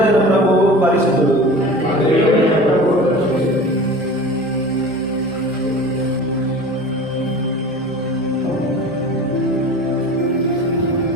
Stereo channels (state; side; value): normal; both; correlation 0.38